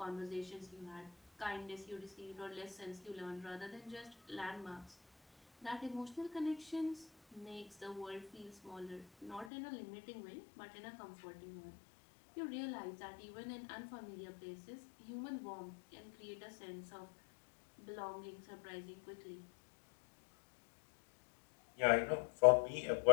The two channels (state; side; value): drops out; right; at 9.5 s